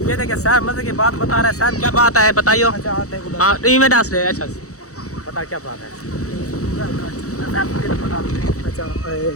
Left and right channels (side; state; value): right; late; 0.65 ms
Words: ये देखिए साहब मज़े की बात बता रहा है। साहब क्या बात है बताइयो? हाँ में डांस रहे। अच्छा बता क्या बात है? अच्छा